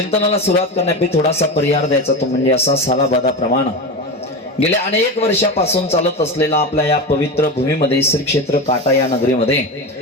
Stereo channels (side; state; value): both; normal; correlation 0.22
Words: सुरुवात करण्यापूर्वी थोडासा परिहार द्यायचा, तो म्हणजे असा सालाबादा प्रमाण गेल्या अनेक वर्षापासून चालत असलेला आपल्या या पवित्र भूमीमध्ये श्री क्षेत्र काटा या